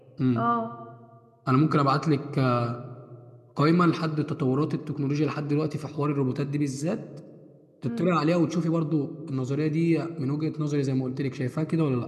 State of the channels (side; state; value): both; identical; correlation 1.00